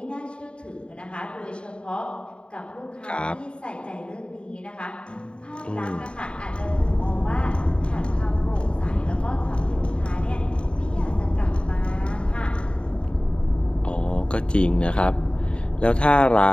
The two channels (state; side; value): late; right; 0.054 ms